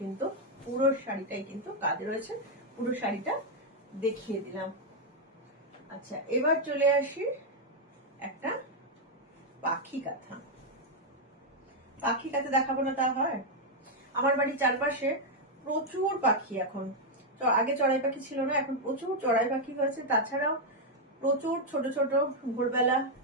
কিন্তু পুরো শাড়িটাই কিন্তু কাজ রয়েছে, পুরো শাড়িটা দেখিয়ে দিলাম। আচ্ছা, এবার চলে আসি একটা পাখি কাঁথা। পাখি কাঁথা দেখাবো না তা হয়? আমার বাড়ির চারপাশে প্রচুর পাখি এখন, আগে চড়াই পাখি ছিল না, এখন প্রচুর চড়াই পাখি হয়েছে, তাছাড়াও প্রচুর ছোট ছোট ভোরবেলা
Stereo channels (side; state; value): both; normal; correlation -0.01